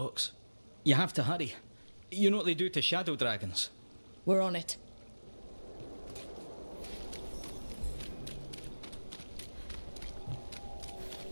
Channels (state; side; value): inverted; both; correlation -1.00